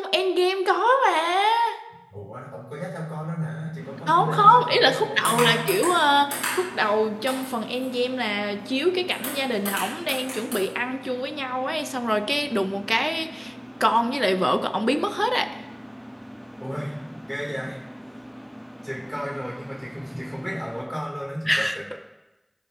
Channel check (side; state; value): both; identical; correlation 1.00